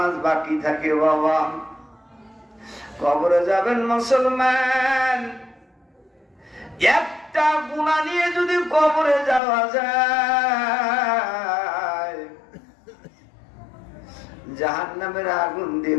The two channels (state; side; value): drops out; right; at 9.4 s